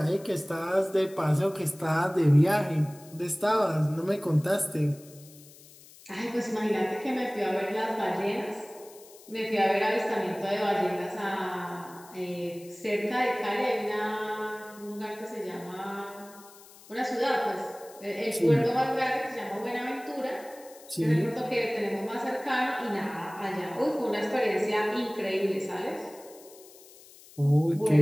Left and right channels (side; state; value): left; noise; hiss, 22 dB below the sound